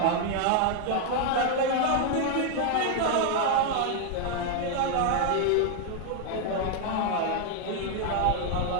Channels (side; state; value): both; different; correlation 0.00